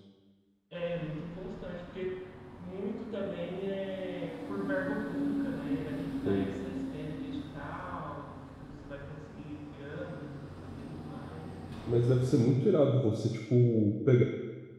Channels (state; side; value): identical; both; correlation 1.00